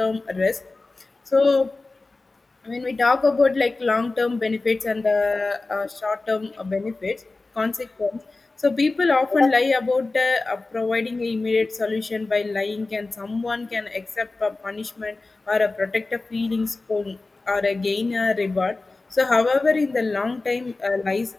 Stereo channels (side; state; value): right; quieter; 3.4 dB